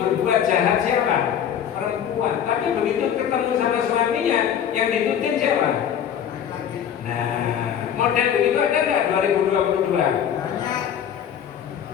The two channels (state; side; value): quieter; right; 9.0 dB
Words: jahat siapa? Perempuan. Tapi begitu ketemu sama suaminya, yang ditutin siapa? Nah, model begitu ada nggak 2022?